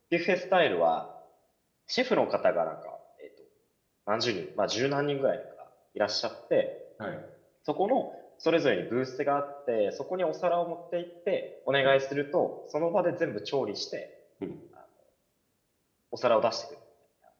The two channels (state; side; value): identical; both; correlation 1.00